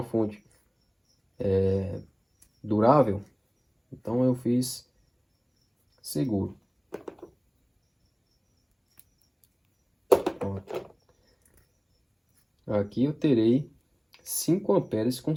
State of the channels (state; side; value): identical; both; correlation 1.00